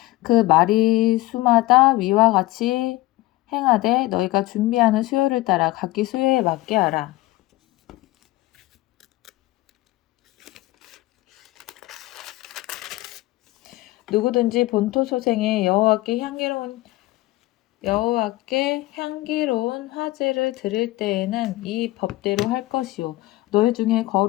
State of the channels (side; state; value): right; quieter; 18.7 dB